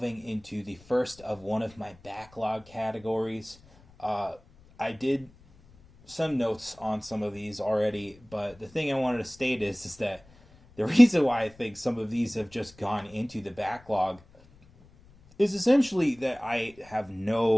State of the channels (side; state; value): left; noise; rumble, 26 dB below the sound